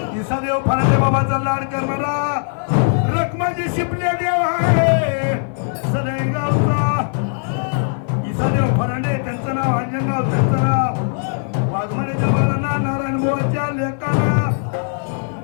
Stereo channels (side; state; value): right; silent; 56 dB below the other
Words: इसादेव फरांडे बाबाचा लाड करणारा रखमाजी शिपले देव आहे सनई गावचा इसादेव फरांडे त्यांचं नाव अंजनगाव त्यांचं नाव वाघमारेच्या बाळांना नारायण मोहनच्या लेकांना